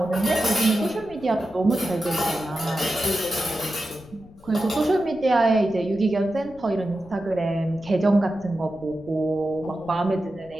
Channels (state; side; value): noise; left; rumble, 23 dB below the sound